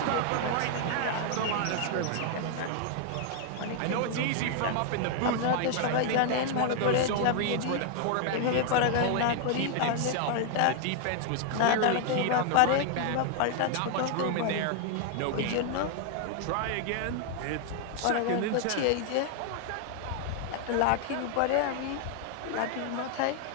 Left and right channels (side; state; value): both; different; correlation 0.00